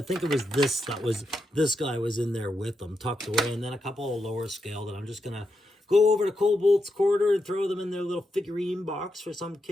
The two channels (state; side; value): normal; both; correlation 0.85